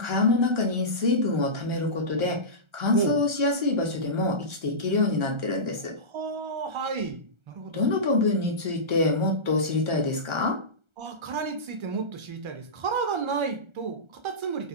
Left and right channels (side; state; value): left; late; 1.3 ms